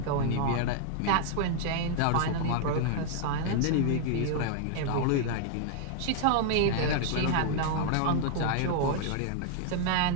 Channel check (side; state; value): both; different; correlation 0.00